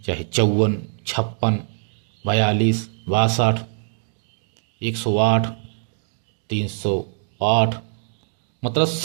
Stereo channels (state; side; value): silent; left; digital silence